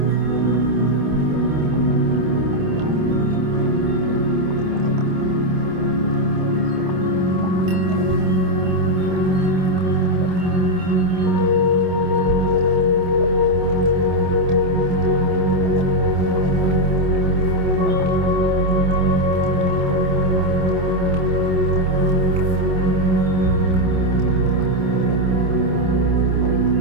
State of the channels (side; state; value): left; late; 27 ms